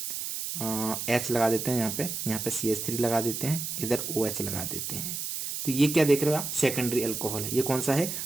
H लगा देते हैं, यहाँ पे CH3 लगा देते हैं, इधर OH लगा देते हैं। तो ये क्या देख रहे हो आप, सेकेंडरी एल्कोहल है। ये कौन सा है,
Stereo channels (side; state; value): right; noise; hiss, 4 dB below the sound